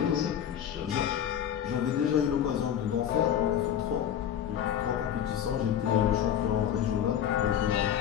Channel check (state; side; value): quieter; right; 9.7 dB